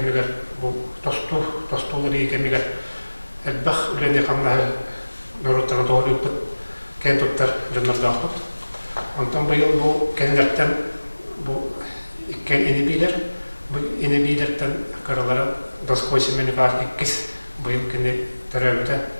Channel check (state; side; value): inverted; both; correlation -1.00